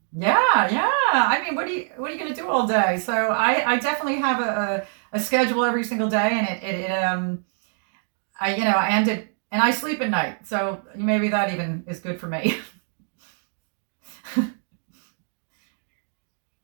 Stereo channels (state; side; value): silent; left; 56 dB below the other